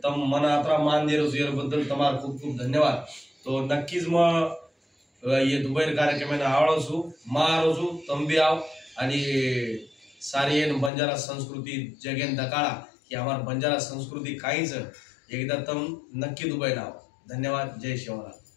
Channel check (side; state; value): right; drops out; at 10.9 s